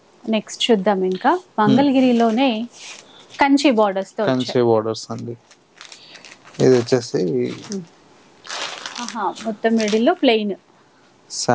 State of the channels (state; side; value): identical; both; correlation 1.00